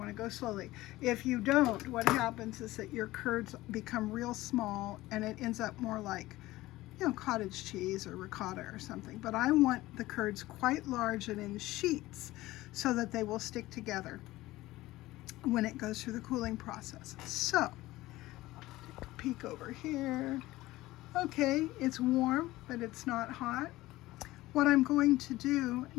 to go slowly. If you don't, what happens is that your curds become real small and it ends up more like, cottage cheese or ricotta or something. But I want the curds quite large and in sheets so that they will stick together when it goes through the cooling process. So, take a peek over here. Okay, it's warm, but it's not hot. What I'm going to do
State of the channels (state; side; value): quieter; right; 17.7 dB